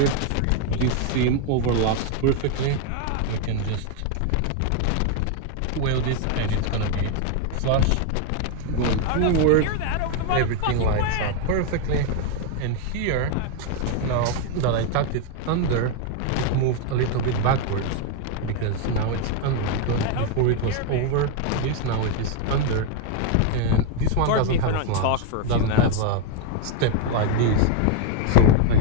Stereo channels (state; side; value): different; both; correlation 0.01